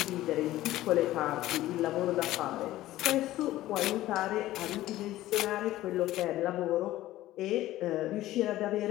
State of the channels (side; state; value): right; quieter; 15.4 dB